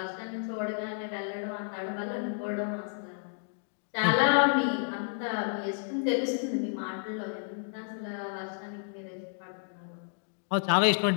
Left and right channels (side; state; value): right; silent; 57 dB below the other